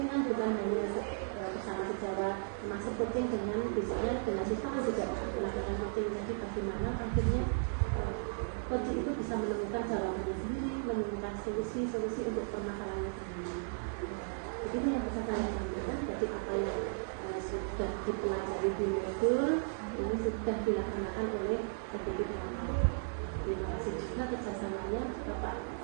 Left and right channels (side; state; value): left; silent; digital silence